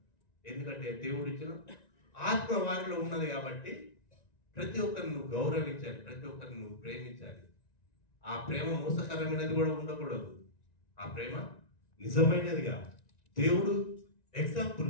ఎందుకంటే దేవుడు ఇచ్చిన ఆత్మ వారిలో ఉన్నది కాబట్టి ప్రతి ఒక్కరిని నువ్వు గౌరవించాలి, ప్రతి ఒక్కరిని నువ్వు ప్రేమించాలి. ఆ ప్రేమ మోసకరమైనది కూడా ఉండకూడదు. ఆ ప్రేమ నిజమైనదిగా. దేవుడు ఎగ్జాంపుల్,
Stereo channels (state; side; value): late; right; 1.9 ms